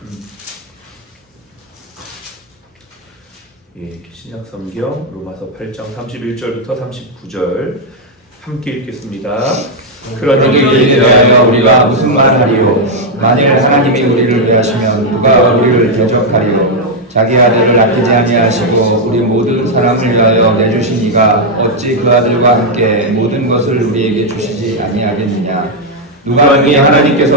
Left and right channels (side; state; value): both; normal; correlation -0.01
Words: 예, 신약성경 로마서 8장 31절부터 39절 함께 읽겠습니다. 그러니 이에 대하여 우리가 무슨 말을 하리요? 만일 하나님이 우리를 위하시면 누가 우리를 대적하리요? 자기 아들을 아끼지 아니하시고 우리 모든 사람을 위하여 내주신 이가 어찌 그 아들과 함께 모든 것을 우리에게 주시지 아니하겠느냐? 누가 능히